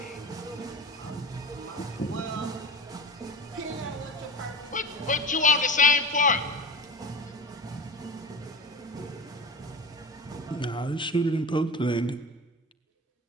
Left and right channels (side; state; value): both; normal; correlation 0.31